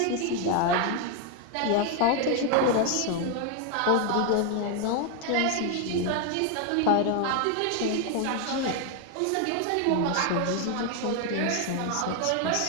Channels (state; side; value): different; both; correlation 0.01